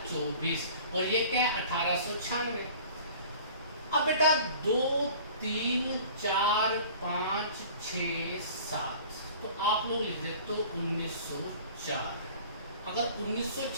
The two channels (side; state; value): both; inverted; correlation -0.45